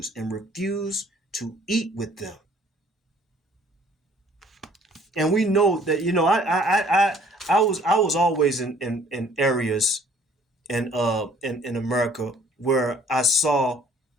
and refuse to eat with them. And we know that, I was always in areas in America where I saw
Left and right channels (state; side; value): normal; both; correlation 0.57